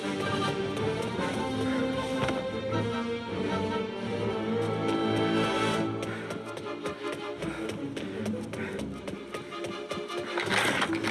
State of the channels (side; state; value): both; identical; correlation 1.00